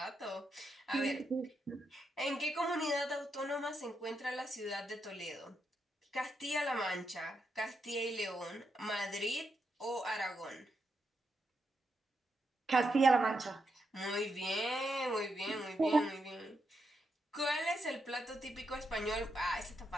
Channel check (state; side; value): normal; both; correlation 0.83